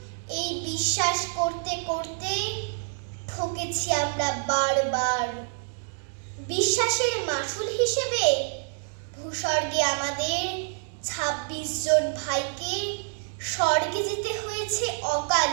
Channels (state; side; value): silent; left; digital silence